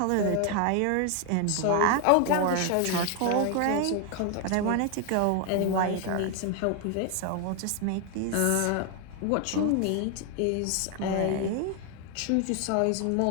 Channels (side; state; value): both; different; correlation 0.01